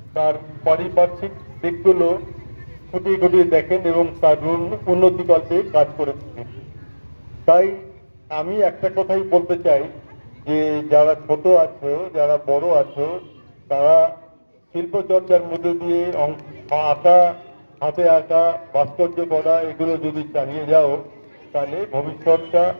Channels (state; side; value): inverted; both; correlation -1.00